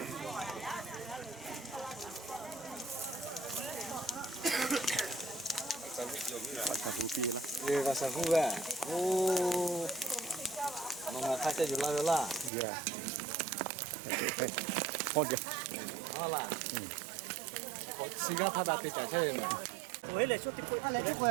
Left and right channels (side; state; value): left; drops out; at 12.5 s